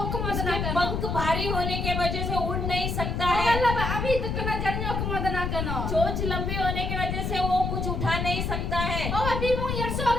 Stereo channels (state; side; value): noise; left; rumble, 1 dB below the sound